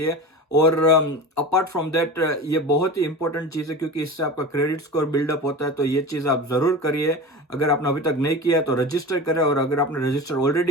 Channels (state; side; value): normal; both; correlation 0.30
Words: और अपार्ट फ्रॉम दैट ये बहुत ही इंपॉर्टेंट चीज़ है, क्योंकि इससे आपका क्रेडिट स्कोर बिल्डअप होता है। तो ये चीज़ आप ज़रूर करिए। अगर आपने अभी तक नहीं किया है तो रजिस्टर करें, और अगर आपने रजिस्टर